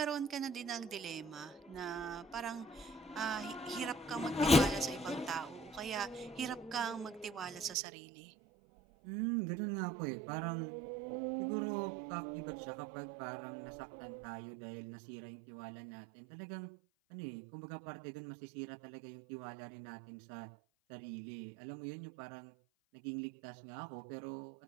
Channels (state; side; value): drops out; left; at 7.8 s